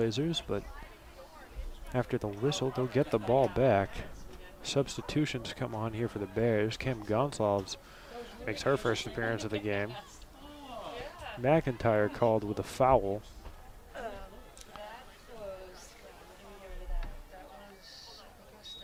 but after the whistle, they'll get the ball back. Substitutions come on here for the Bears. Kim Gonsalves makes her first appearance of the game. McIntyre called with a foul.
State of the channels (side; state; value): both; identical; correlation 1.00